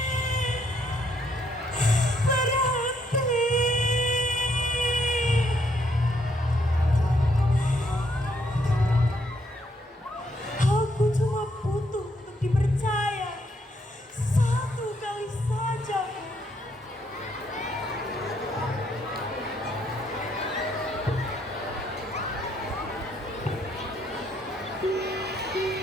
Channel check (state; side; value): normal; both; correlation 0.72